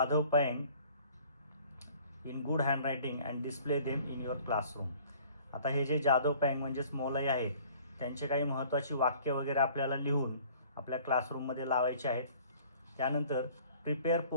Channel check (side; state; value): both; inverted; correlation -0.53